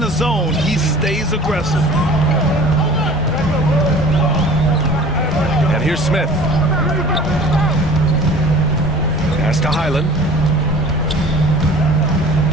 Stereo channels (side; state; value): both; normal; correlation 0.45